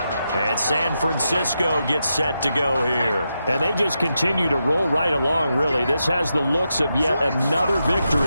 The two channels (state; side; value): inverted; both; correlation -0.86